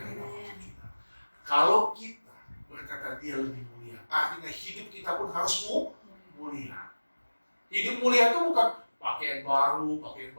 apapun kita. Kalau kita berkata dia lebih mulia, artinya hidup kita pun harus mulia. Hidup mulia itu bukan pakaian baru, pakaian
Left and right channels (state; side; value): inverted; both; correlation -1.00